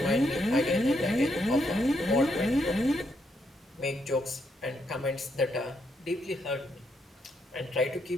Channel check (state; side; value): normal; both; correlation 0.77